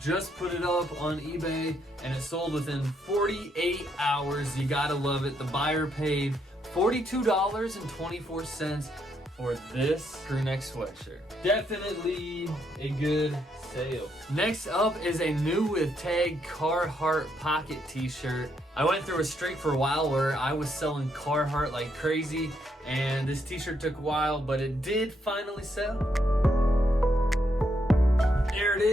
put it up on eBay and it sold within 48 hours. You gotta love it. The buyer paid $42.24 for this crew neck sweatshirt. Definitely a good sale. Next up is a new with tag Carhartt pocket t-shirt. I went through a streak for a while where I was selling Carhartt like crazy, and this t-shirt took a while, but it did finally sell. There it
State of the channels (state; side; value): normal; both; correlation 0.76